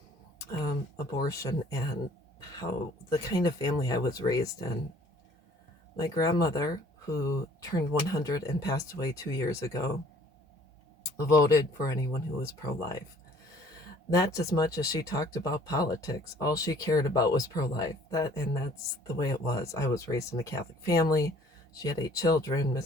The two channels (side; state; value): both; normal; correlation 0.55